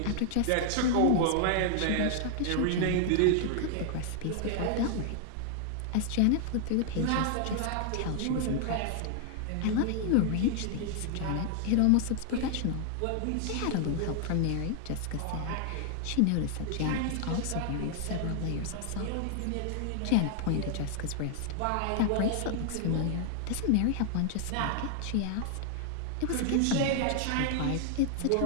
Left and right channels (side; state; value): both; different; correlation 0.00